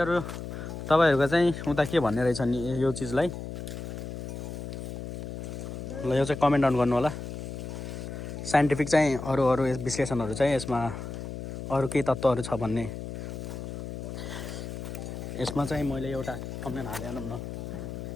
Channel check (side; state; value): left; noise; hum, 7 dB below the sound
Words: तपाईहरुको चाहिँ उता के भन्ने रहेछ नि यो चीजलाई ल यो चाहिँ कमेन्ट डाउन गर्नु होला साइन्टिफिक चाहिँ अरू विश्लेषणहरू चाहिँ यसमा अरू केही तत्त्वहरू छ भन्ने। यसमा चाहिँ मैले एउटा थम्बनेल हालिहालौँ न।